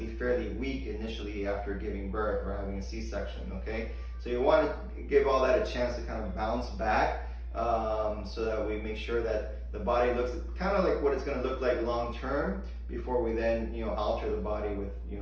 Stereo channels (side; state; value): both; identical; correlation 1.00